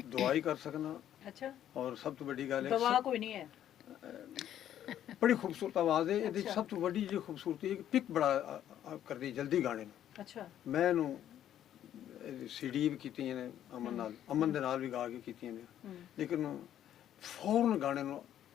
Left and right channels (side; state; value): right; quieter; 11.0 dB